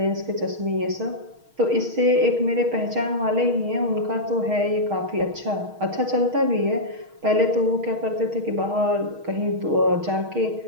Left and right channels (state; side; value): late; left; 6.4 ms